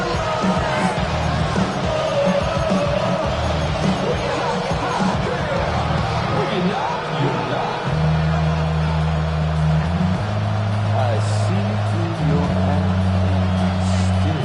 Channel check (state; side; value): identical; both; correlation 1.00